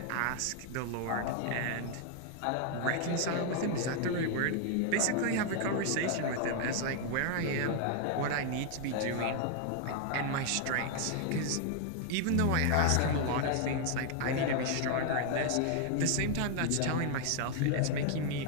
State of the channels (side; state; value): both; different; correlation 0.00